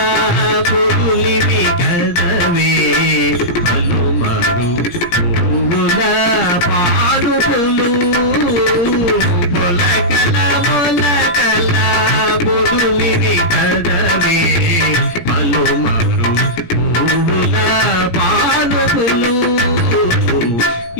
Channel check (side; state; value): right; late; 17 ms